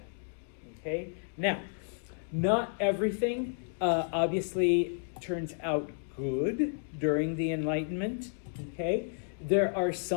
okay? Now, not everything obviously turns out good during the Enlightenment, okay? There are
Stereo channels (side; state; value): right; silent; digital silence